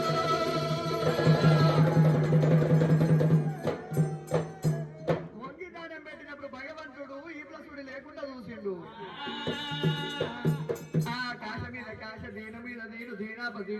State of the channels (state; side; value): identical; both; correlation 1.00